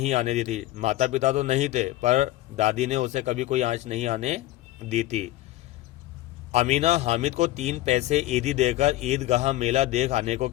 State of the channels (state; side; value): quieter; right; 16.2 dB